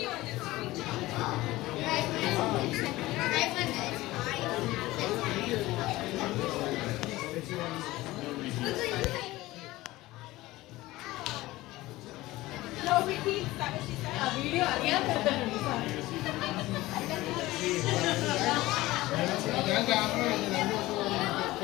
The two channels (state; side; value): quieter; right; 18.3 dB